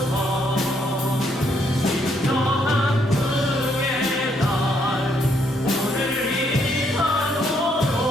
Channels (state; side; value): normal; both; correlation 0.72